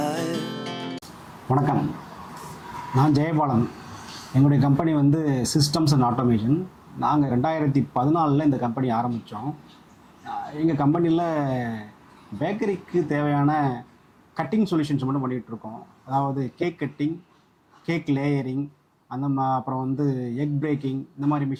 வணக்கம், நான் ஜெயபாலன். எங்களுடைய கம்பெனி வந்து சிஸ்டம்ஸ் அண்ட் ஆட்டோமேஷன். நாங்கள் 2014 இந்த கம்பெனி ஆரம்பித்தோம். எங்கள் கம்பெனியில் பேக்கரிக்கு தேவையான கட்டிங் சொல்யூஷன்ஸ் மட்டும் பண்ணிகிட்ருக்கோம். அதாவது கேக் கட்டிங், கேக் லேயரிங், அப்புறம் வந்து எக் பிரேக்கிங், இந்த மாதிரி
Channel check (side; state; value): both; identical; correlation 1.00